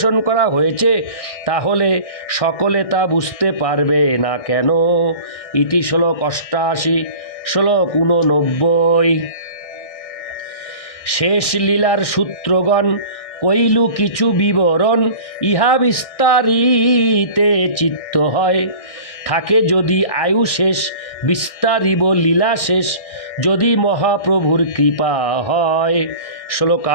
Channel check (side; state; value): right; late; 1.6 ms